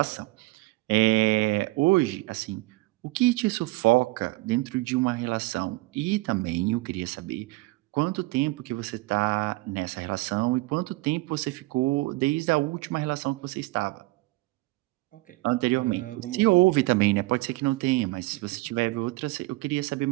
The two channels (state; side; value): quieter; left; 21.6 dB